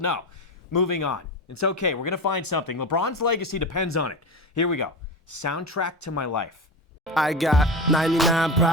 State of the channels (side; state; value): both; normal; correlation 0.23